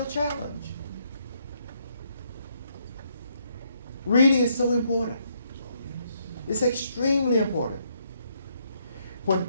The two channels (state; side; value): inverted; both; correlation -0.73